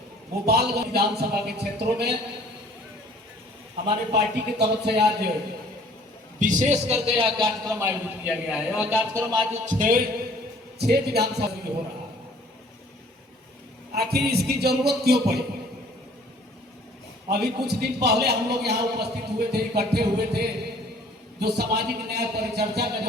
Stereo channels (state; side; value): normal; both; correlation 0.54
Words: गोपालगंज विधानसभा के क्षेत्रों में हमारे पार्टी की तरफ से आज विशेष करके यह कार्यक्रम आयोजित किया गया है। यह कार्यक्रम आज छह विधानसभा में हो रहा है। आखिर इसकी जरूरत क्यों पड़ी? अभी कुछ दिन पहले हम लोग यहाँ उपस्थित हुए थे, इकट्ठे हुए थे। जो सामाजिक न्याय परिचर्चा का